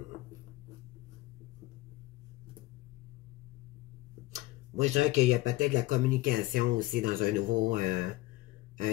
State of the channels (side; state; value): right; quieter; 19.0 dB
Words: Moi, je dirais qu'il y a peut-être de la communication aussi dans un